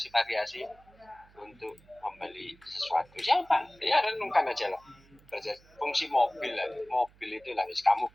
untuk membeli sesuatu. Siapa? Ya renungkan aja lah. Fungsi mobil lah. Mobil itu lah, kamu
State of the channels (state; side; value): noise; right; hum, 27 dB below the sound